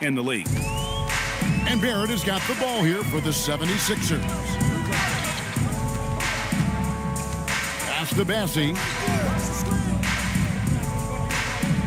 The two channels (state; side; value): identical; both; correlation 1.00